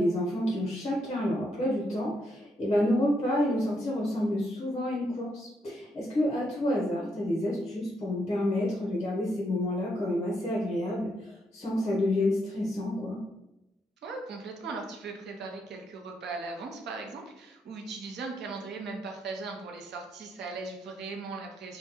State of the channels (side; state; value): both; normal; correlation 0.78